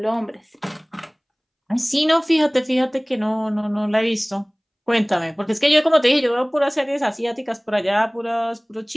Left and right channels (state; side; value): identical; both; correlation 1.00